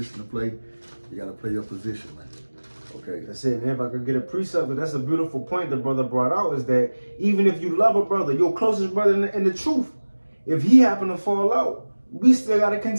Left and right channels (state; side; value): inverted; both; correlation -1.00